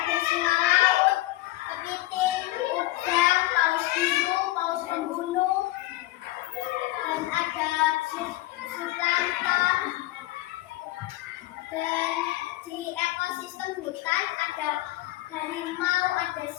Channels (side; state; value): right; quieter; 17.5 dB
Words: singa laut, kepiting, udang, paus biru, paus pembunuh, dan ada sulanta. Dan di ekosistem hutan ada harimau, ada